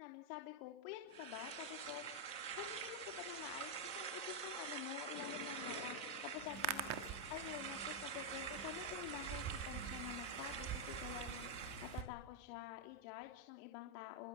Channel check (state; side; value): late; right; 4.0 ms